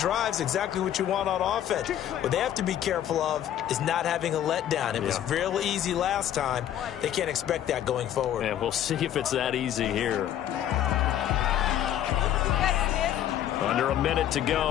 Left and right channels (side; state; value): right; quieter; 11.2 dB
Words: exactly what you want on offense. What they have to be careful of is not having a letdown. It was real easy last time. They can't expect that going forward. And we'll see if it's that easy here. Under a minute to